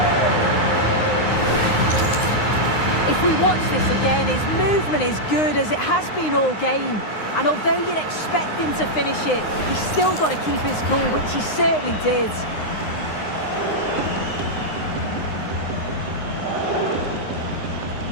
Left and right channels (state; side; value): late; right; 9.7 ms